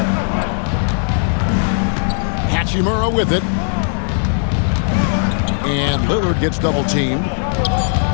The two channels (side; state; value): right; silent; digital silence